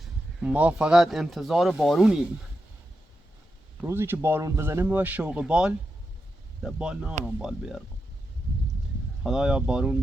ما فقط انتظار بارونیم روزی که بارون بزنه ما شوق بال ده بال نارم بال بیارم خدایا بارون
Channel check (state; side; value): normal; both; correlation 0.88